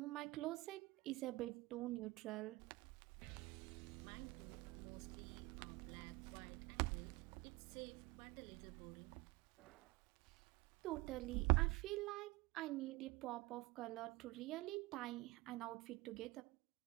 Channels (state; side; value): quieter; left; 21.6 dB